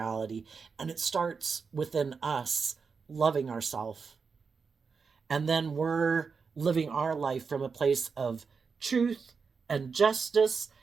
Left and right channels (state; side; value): quieter; left; 5.3 dB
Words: And it starts within us loving ourselves. And then we're living our life from a place of truth and justice